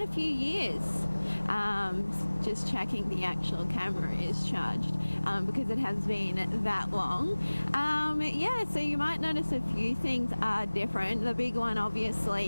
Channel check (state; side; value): inverted; both; correlation -1.00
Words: a few years. Just checking the actual camera is charged because it has been that long. Yeah, so you might notice a few things are different. The big one,